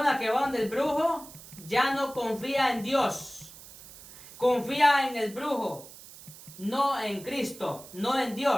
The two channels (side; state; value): right; noise; hiss, 18 dB below the sound